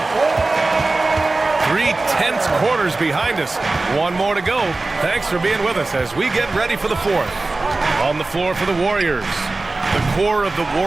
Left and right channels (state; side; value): quieter; left; 3.3 dB